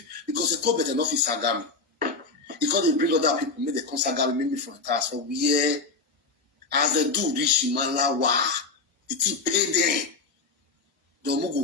because e ko bete no fit sagami. Because they bring other people, make the consagami maybe for a task. So we as they do reach Malawa, the thing paid them. The Mugu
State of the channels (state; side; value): quieter; right; 3.9 dB